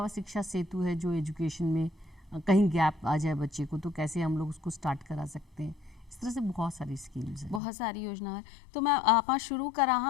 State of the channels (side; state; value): right; drops out; at 7.6 s